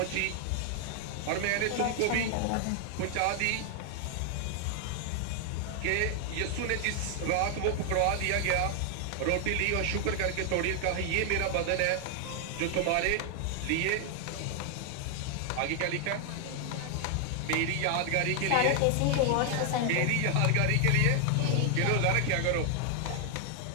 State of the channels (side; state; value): both; different; correlation 0.00